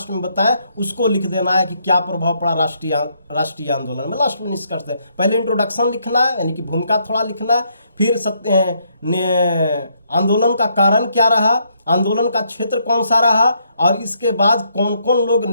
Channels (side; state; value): both; inverted; correlation -0.73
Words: में बताएं उसको लिख देना है कि क्या प्रभाव पड़ा राष्ट्रीय आंदोलन में। लास्ट में निष्कर्ष है, पहले इंट्रोडक्शन लिखना है, यानी कि भूमिका थोड़ा लिखना है, फिर आंदोलन का कारण क्या रहा, आंदोलन का क्षेत्र कौन सा रहा, और इसके बाद कौन कौन लोग